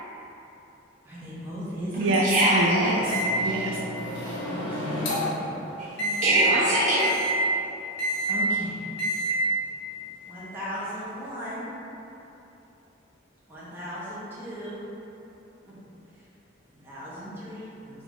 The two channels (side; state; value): both; normal; correlation 0.01